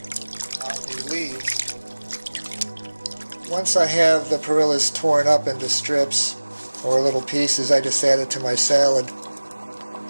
on the leaves. Once I have the perillas torn up into strips or little pieces, I just add it to my salad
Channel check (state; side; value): inverted; both; correlation -1.00